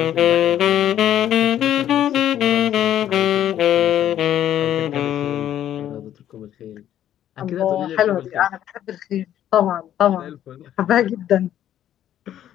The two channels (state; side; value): quieter; right; 11.3 dB